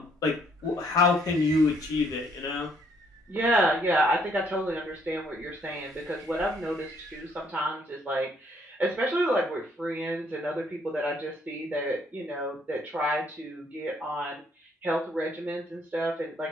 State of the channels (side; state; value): both; normal; correlation 0.67